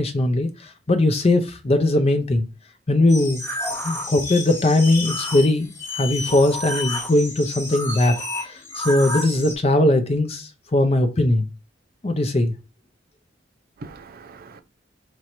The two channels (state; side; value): normal; both; correlation 0.75